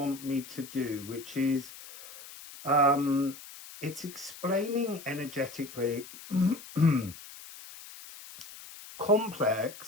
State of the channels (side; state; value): left; noise; hiss, 16 dB below the sound